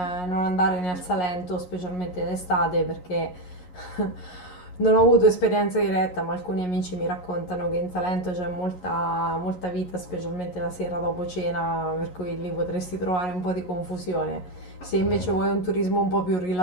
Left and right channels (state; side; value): late; right; 11 ms